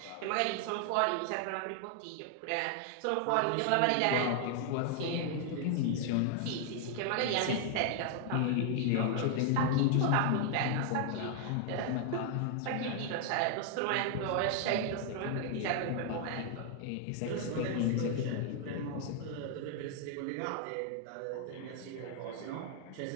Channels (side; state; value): both; different; correlation 0.00